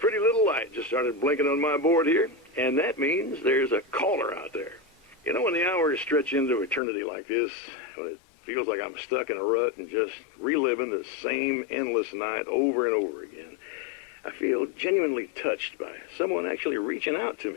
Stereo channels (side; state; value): right; drops out; at 6.8 s